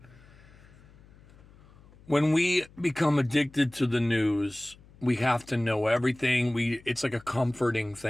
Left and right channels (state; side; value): noise; left; hum, 25 dB below the sound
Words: When we become addicted to the news, we have to know everything. It's like a comforting